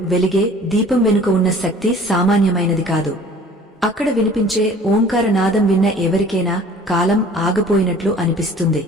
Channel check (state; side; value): normal; both; correlation 0.49